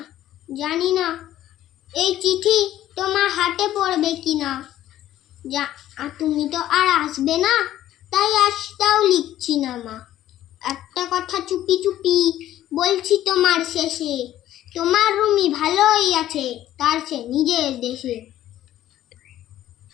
জানি না এই চিঠি তোমার হাতে পড়বে কিনা। তুমি তো আর আসবে না, তাই আজটাও লিখছি না মা। একটা কথা চুপি চুপি বলছি তোমার শেষে, তোমার রুমি ভালোই আছে তার সে নিজের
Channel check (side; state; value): right; quieter; 13.0 dB